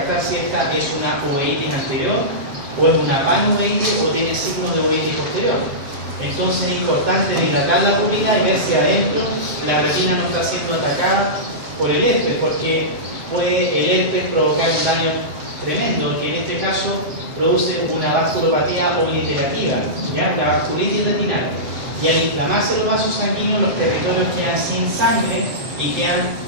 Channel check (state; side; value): late; left; 7.6 ms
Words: si esta es una uveitis anterior o es una panuveitis o tiene signos de uveitis posterior. Entonces es importante dilatar la pupila y ver si adentro la retina no está siendo atacada por el herpes, porque puede el herpes provocar un daño tremendo, que en este caso produce una vasculopatía obliterativa, ¿ya? La vasculitis retinal. Y al inflamarse los vasos sanguíneos, los territorios quedan sin sangre y